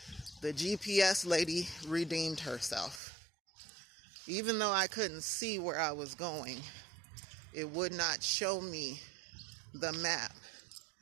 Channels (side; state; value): left; drops out; at 3.0 s